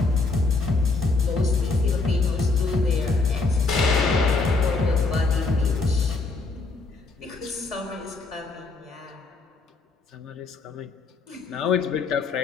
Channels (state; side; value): quieter; right; 3.8 dB